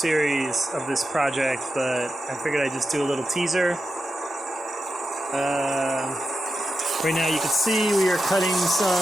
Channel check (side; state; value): both; normal; correlation 0.89